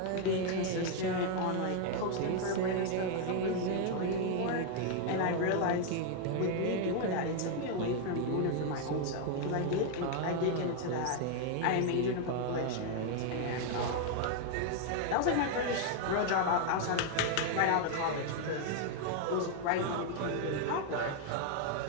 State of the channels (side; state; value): both; different; correlation 0.00